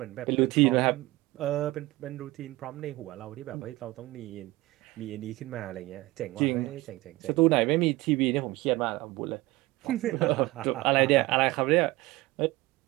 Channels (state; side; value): quieter; left; 20.0 dB